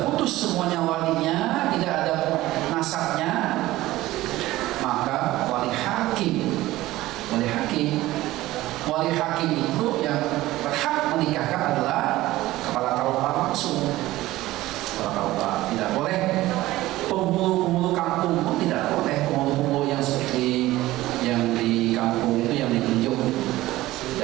putus semuanya walinya, tidak ada nasabnya, maka wali hakim itu yang berhak menikahkan adalah kepala KUA langsung. Kepala KUA tidak boleh, penghulu kampung pun tidak boleh, penghulu yang seperti yang di kampung itu yang ditunjuk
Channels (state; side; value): quieter; left; 16.9 dB